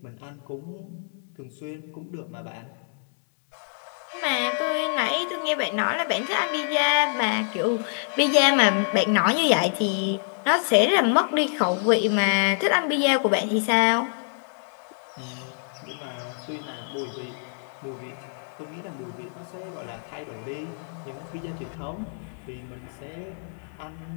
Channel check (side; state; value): right; silent; digital silence